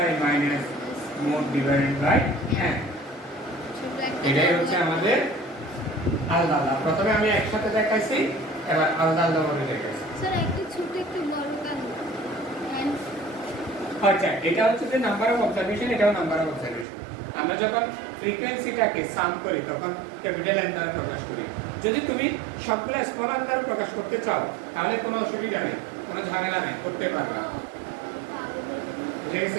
minus mode divided by n এটাই হচ্ছে আমাদের আলাদা আলাদা। প্রথমে আমি একসাথে দেখাইছি, এবার আলাদা আলাদা ভাবে দেখাইছি। স্যার একটু ছোট একটু বড় কেন? আচ্ছা, এটা হচ্ছে যে নাম্বার অফ অবজারভেশন, এটাও নাম্বার অফ অবজারভেশন। আমরা যখন ফ্রিকোয়েন্সিটাকে সাম করি তখন ক্যাপিটাল এন দ্বারা প্রকাশ করি। যদি তুমি সবগুলো স্মল এন দ্বারা প্রকাশ করতে চাও তাহলে কোনো অসুবিধা নেই, কোনো ঝামেলা নেই, করতে পারবা। বুঝে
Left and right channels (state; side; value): drops out; left; at 16.9 s